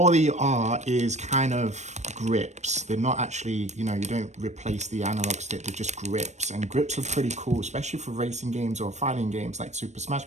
they are is kind of grips. They're not actually, you know, you don't replace the analog stick, they're just grips. And grips are pretty cool, especially for racing games or fighting games like Super Smash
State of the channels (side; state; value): left; late; 0.34 ms